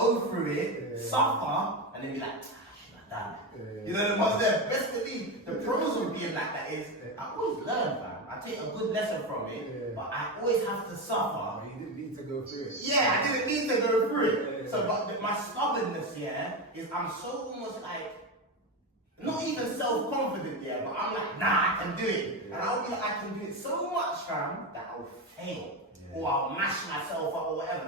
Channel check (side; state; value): both; normal; correlation 0.16